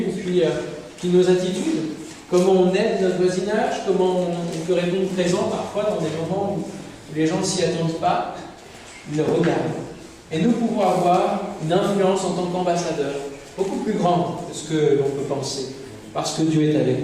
puis nos attitudes, comment on aide notre voisinage, comment on peut répondre présent parfois dans des moments où les gens ne s'y attendent pas. Ils le regardent. Et nous pouvons avoir une influence en tant qu'ambassadeurs beaucoup plus grande que ce que l'on peut penser, parce que Dieu est avec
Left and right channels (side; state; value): both; identical; correlation 1.00